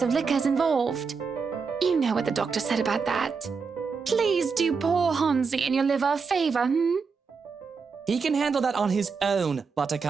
of liquor's involved. You know what the doctor said about that. Please do poor Hansi and your liver a favor, He can handle that on his own,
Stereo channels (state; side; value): quieter; left; 5.2 dB